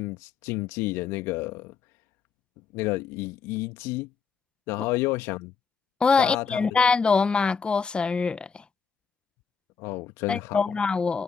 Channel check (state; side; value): quieter; right; 5.9 dB